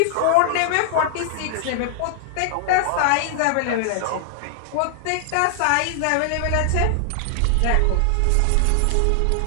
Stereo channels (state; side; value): different; both; correlation 0.00